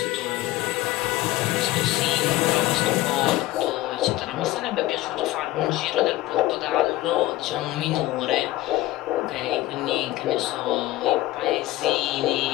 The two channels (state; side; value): quieter; right; 16.8 dB